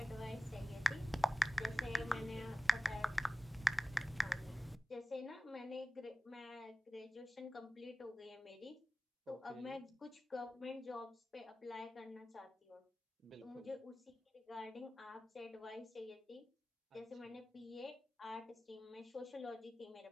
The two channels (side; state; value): both; normal; correlation 0.96